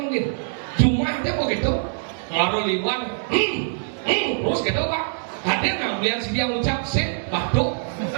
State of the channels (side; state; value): left; silent; digital silence